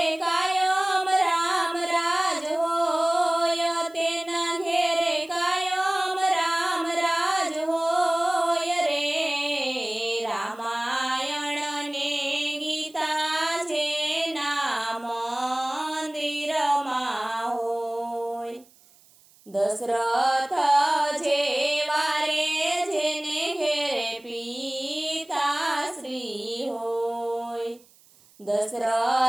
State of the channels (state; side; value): noise; right; hiss, 28 dB below the sound